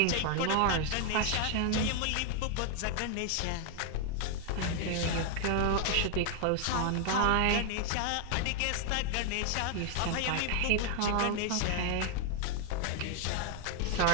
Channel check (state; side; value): different; both; correlation 0.00